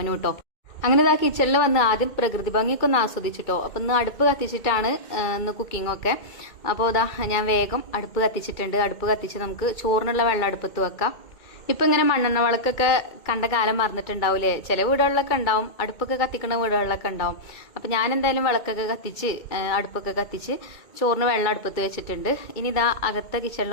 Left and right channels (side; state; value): right; late; 2.3 ms